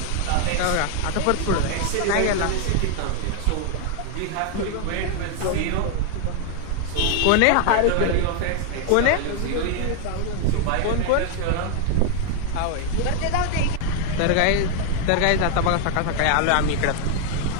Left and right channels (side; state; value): both; different; correlation 0.00